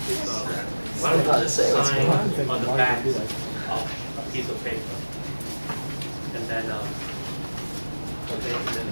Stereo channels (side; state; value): both; inverted; correlation -1.00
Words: Why don't you just sign on. on the back of a piece of paper, and then